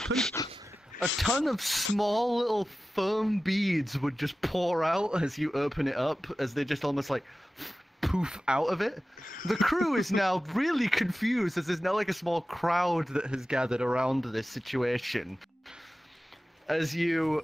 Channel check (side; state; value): both; normal; correlation 0.95